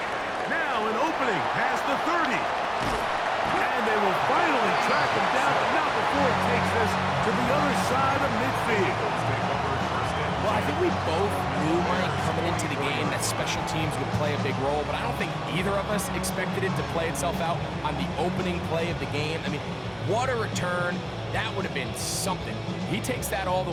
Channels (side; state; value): both; identical; correlation 1.00